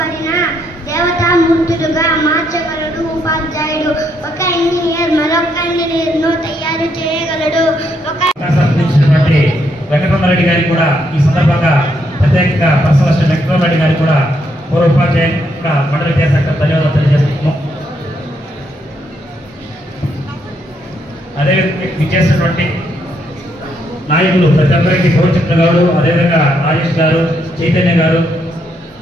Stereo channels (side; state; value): both; normal; correlation 0.75